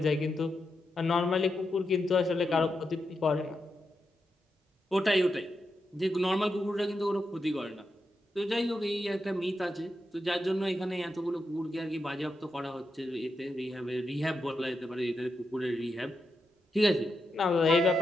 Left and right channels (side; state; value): both; normal; correlation 0.86